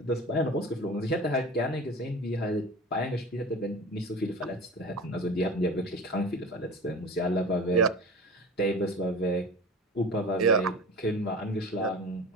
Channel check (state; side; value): normal; both; correlation 0.35